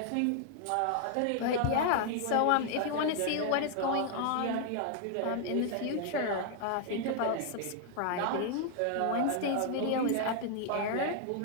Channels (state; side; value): different; both; correlation 0.00